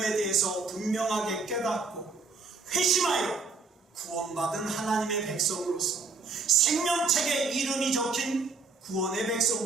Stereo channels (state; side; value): quieter; left; 4.3 dB